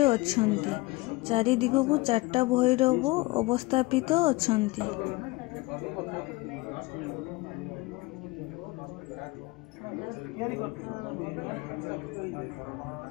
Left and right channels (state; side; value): quieter; right; 22.3 dB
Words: ଅଛନ୍ତି। ଚାରିଦିଗକୁ 4ଟା ଭୈରବ ଅବସ୍ଥାପିତ ଅଛନ୍ତି।